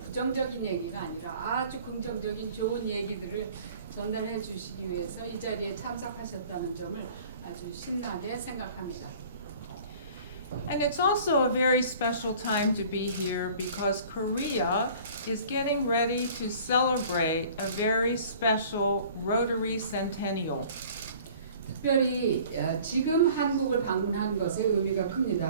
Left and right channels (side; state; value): both; inverted; correlation -0.49